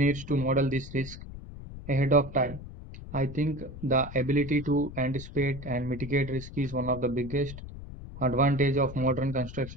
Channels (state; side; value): noise; left; rumble, 12 dB below the sound